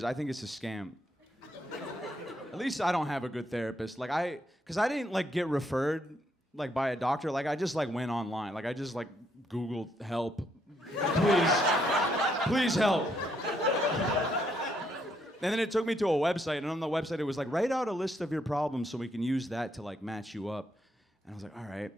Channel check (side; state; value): both; normal; correlation 0.74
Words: I think it's a scam. At least I don't have a good therapist. Because I didn't like get referred like by a doctor. Like I just like went online. Like I just like Googled help. Please help. And then it took me to a website, and on the website it was like, write out a list of your problems so we can use that to like match you up. And I was like, all right.